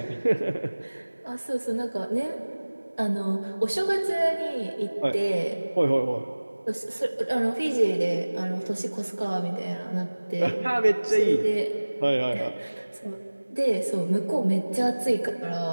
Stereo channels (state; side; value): inverted; both; correlation -1.00